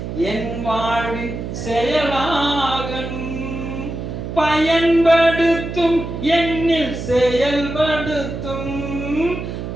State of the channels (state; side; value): noise; right; hum, 6 dB below the sound